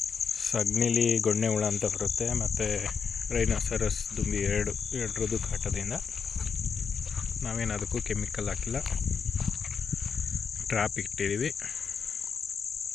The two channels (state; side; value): quieter; right; 6.1 dB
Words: ಸಗಣಿಲಿ ಗೊಣ್ಣೆ ಹುಳ ಅಂತ ಬರುತ್ತೆ, ಮತ್ತು ರೈನೋಸರಸ್ ದುಂಬಿ ಎರಡರದ್ದು ಕಾಟದಿಂದ. ನಾವೇನು ಅದಕ್ಕೂ ಕೆಮಿಕಲ್ ಹಾಕಿಲ್ಲ, ಟ್ರ್ಯಾಪ್ ಇಟ್ಟಿದ್ದೀವಿ.